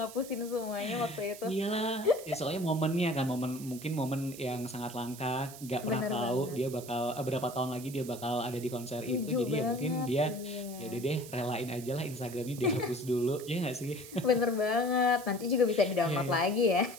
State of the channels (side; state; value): right; noise; hiss, 15 dB below the sound